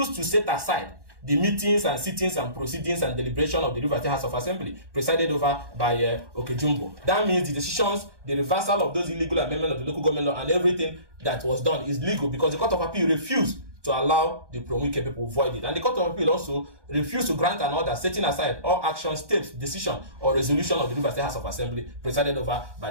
to set aside the meetings and sittings and proceedings and deliberation of the Rivers State House of Assembly presided over by Okejumbo. That means the decisions, the reversal of those illegal amendments of the local government law and everything that was done is legal because the Court of Appeal refused to allow the pro-Wike people void it. And the Court of Appeal also refused to grant an order setting aside all action, steps, decision, or resolution of the Rivers State House of Assembly presided over by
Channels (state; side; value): late; left; 1.1 ms